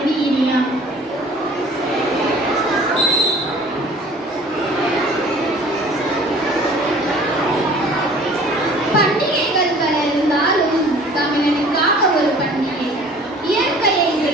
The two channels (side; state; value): both; normal; correlation 0.49